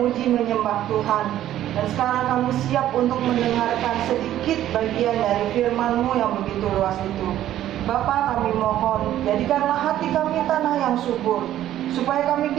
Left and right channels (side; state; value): left; quieter; 12.5 dB